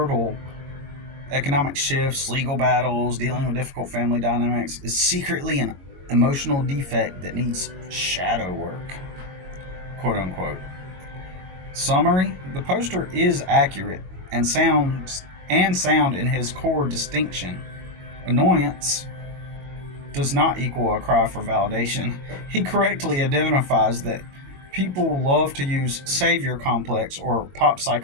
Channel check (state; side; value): late; left; 22 ms